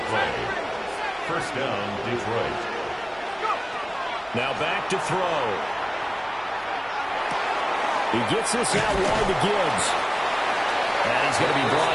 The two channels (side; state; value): right; noise; hum, 27 dB below the sound